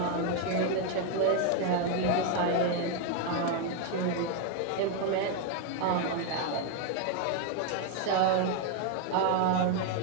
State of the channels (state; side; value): different; both; correlation 0.01